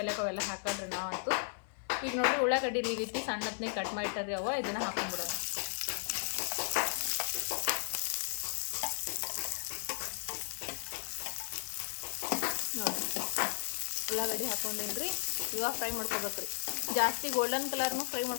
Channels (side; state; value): right; silent; 54 dB below the other